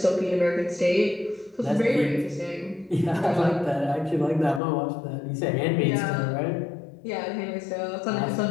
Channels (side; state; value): right; drops out; at 4.6 s